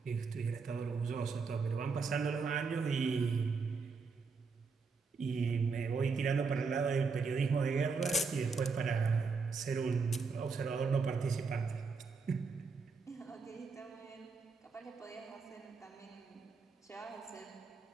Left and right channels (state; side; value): quieter; left; 4.8 dB